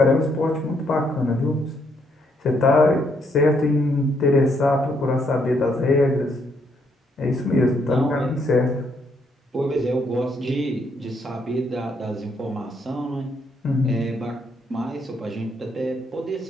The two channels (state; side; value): normal; both; correlation 0.73